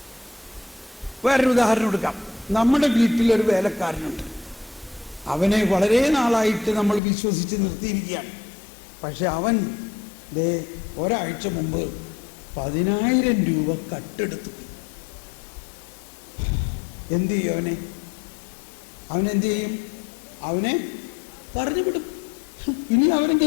വേറൊരു ഉദാഹരണം എടുക്കാം. നമ്മുടെ വീട്ടിലൊരു വേലക്കാരനുണ്ട്. അവനെ വളരെ നാളായിട്ട് നമ്മൾ വിശ്വസിച്ച് നിർത്തിയിരിക്കുകയാണ്. പക്ഷെ അവൻ ഒരാഴ്ച മുമ്പ് 10,000 രൂപ കട്ടെടുത്തു. എന്ത് ചെയ്യും അവനെന്ത് ചെയ്യും? അവനെ പറഞ്ഞു വിടും. ഇനി അവനെ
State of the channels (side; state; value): right; drops out; at 7.0 s